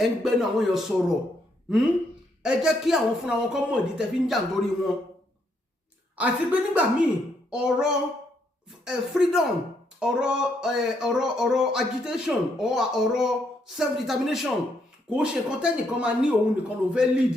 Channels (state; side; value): normal; both; correlation 0.75